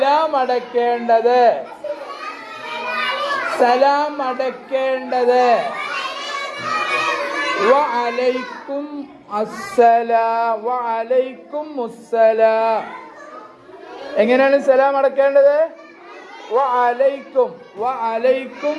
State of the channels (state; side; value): identical; both; correlation 1.00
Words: അടക്കേണ്ടത്? സലാം അടക്കേണ്ടത് വഅലൈക്കും അസ്സലാം വഅലൈക്കും മുസ്സലാം. എങ്ങനെയാണ് സലാം അടക്കേണ്ടത്? വഅലൈക്കും വഅലൈക്കും